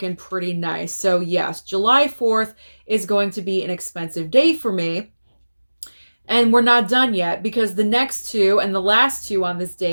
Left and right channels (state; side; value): inverted; both; correlation -1.00